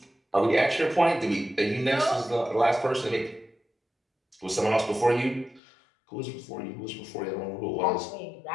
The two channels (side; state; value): right; drops out; at 5.6 s